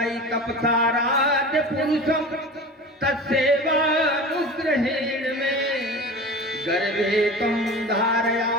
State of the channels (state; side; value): normal; both; correlation 0.34